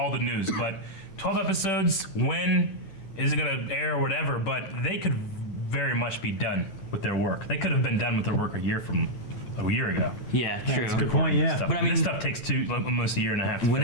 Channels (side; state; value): right; late; 9.1 ms